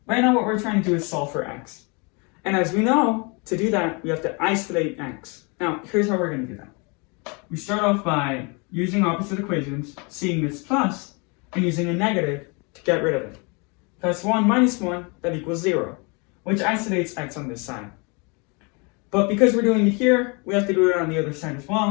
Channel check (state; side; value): quieter; right; 31.2 dB